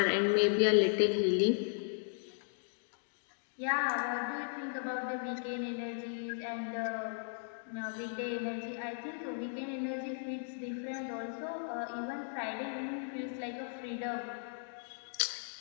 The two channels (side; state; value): right; silent; digital silence